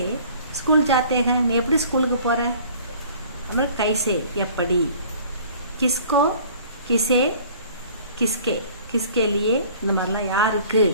स्कूल जाते हैं நீ எப்படி ஸ்கூலுக்கு போற, அப்புறம் कैसे எப்படி, किसको किसे किसके किसके लिए இந்த மாதிரிலாம் யாருக்கு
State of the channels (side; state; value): both; inverted; correlation -0.50